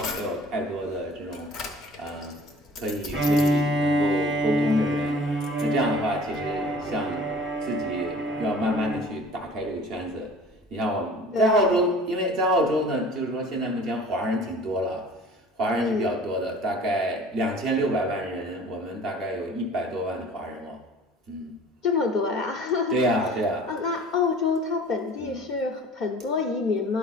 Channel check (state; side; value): normal; both; correlation 0.47